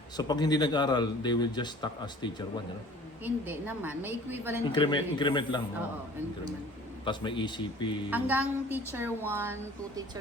So, pag hindi nag-aral, they will just stuck as teacher 1, you know? Hindi naman. May equivalent Increment lang. Oo, increment. Tapos may ECP. Hanggang teacher 1 to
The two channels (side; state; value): both; normal; correlation 0.48